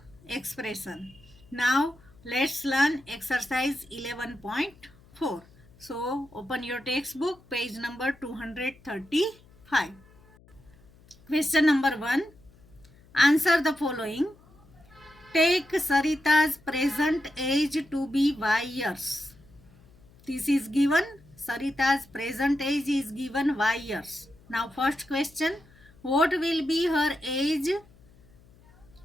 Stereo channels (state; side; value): noise; left; hum, 27 dB below the sound